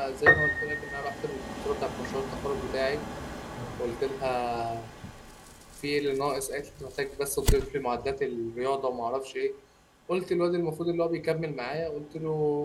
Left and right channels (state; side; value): identical; both; correlation 1.00